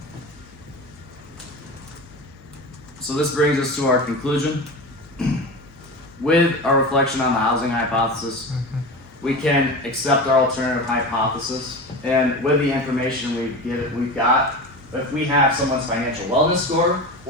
So this brings us to our conclusion. With our reflection on the housing hypothesis, we can accept our alternative hypothesis, and with the information we've got, if we have someone's financial wellness score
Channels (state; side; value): normal; both; correlation 0.27